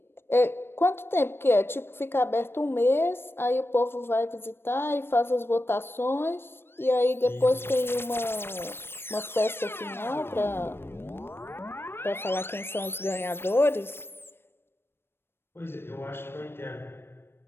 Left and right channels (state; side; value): late; right; 0.11 ms